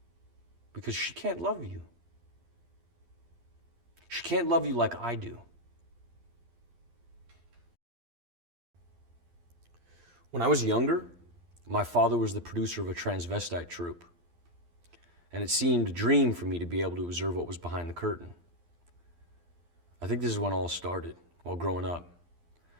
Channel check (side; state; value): left; late; 12 ms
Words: Because she can't love you. She can't love you like I do. When I was younger, my father was the producer of a transvestite troupe, and it seemed a dream for me to be able to observe what was behind the curtain. I think this is when all started, while growing up.